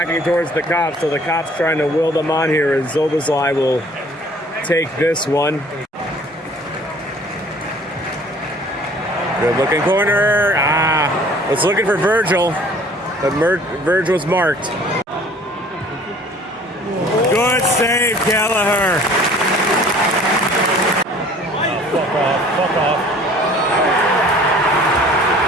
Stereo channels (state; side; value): normal; both; correlation 0.52